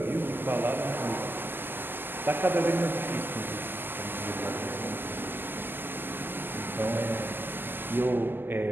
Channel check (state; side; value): late; left; 0.095 ms